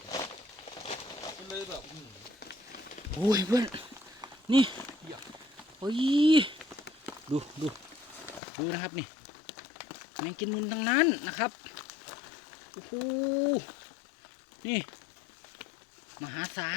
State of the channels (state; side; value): drops out; right; at 8.4 s